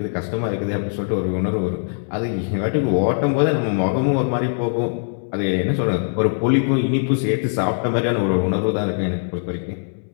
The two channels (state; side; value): silent; right; digital silence